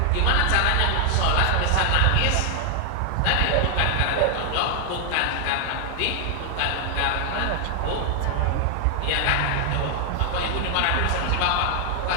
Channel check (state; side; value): different; both; correlation 0.00